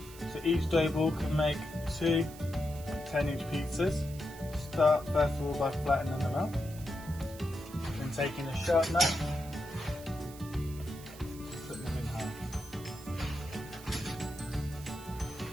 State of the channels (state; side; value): noise; right; hiss, 18 dB below the sound